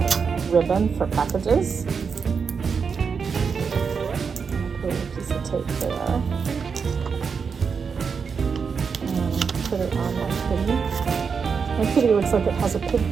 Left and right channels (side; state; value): left; quieter; 5.8 dB